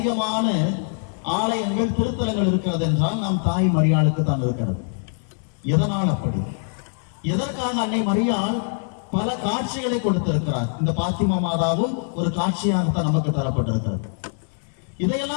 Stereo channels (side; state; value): right; silent; 63 dB below the other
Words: ஆலயங்கள் திருத்தலங்கள் இருக்கிறது என்றால் நாம் தாய் மரியாளுக்கு தான் இருக்கிறது. எதனால் அப்படி? எதற்காக அன்னை மரியாள் பல காட்சிகளை கொடுத்திருக்கிறார்? இந்த பாத்திமா மாதாவும் ஒரு காட்சியாகத்தான் நமக்கு தரப்பட்டிருக்கிறது.